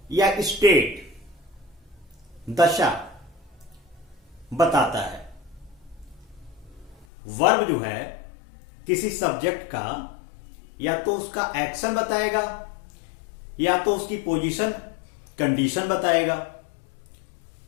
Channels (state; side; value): drops out; right; at 7.1 s